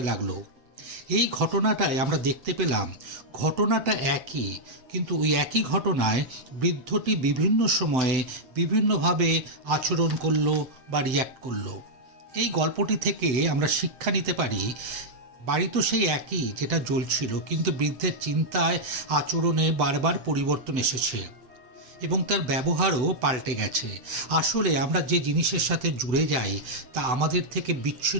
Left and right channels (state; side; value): late; left; 7.9 ms